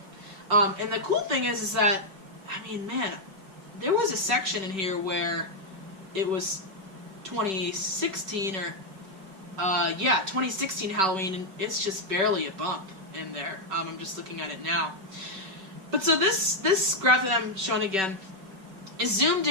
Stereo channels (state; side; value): late; left; 5.2 ms